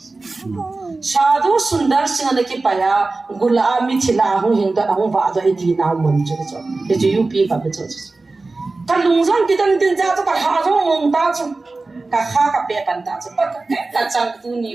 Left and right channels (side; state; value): left; quieter; 3.5 dB